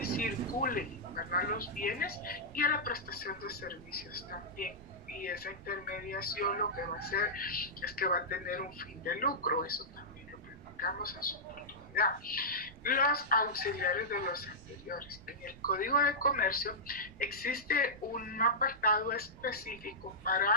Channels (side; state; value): right; noise; rumble, 20 dB below the sound